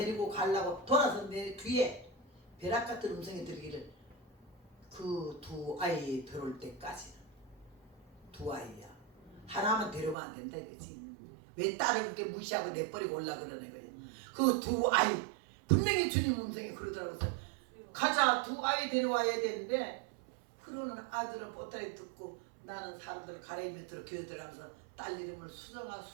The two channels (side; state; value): left; drops out; at 10.2 s